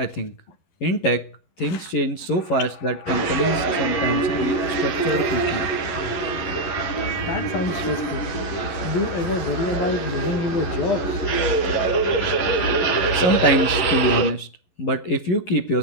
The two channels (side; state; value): right; late; 11 ms